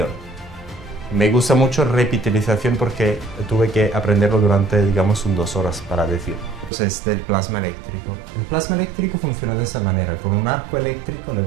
Me gusta mucho repitelización porque tuve que aprenderlo durante, digamos, 2 horas para decirlo. Entonces, del plasma eléctrico. El plasma eléctrico funciona de esa manera. Con un arco eléctrico le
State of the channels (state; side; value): drops out; left; at 6.7 s